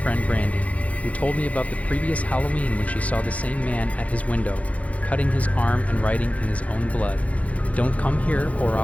friend Brandy. who told me about the previous Halloween when she saw the same man at his window, cutting his arm and writing in his own blood, "Don't come here or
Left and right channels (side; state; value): right; late; 0.067 ms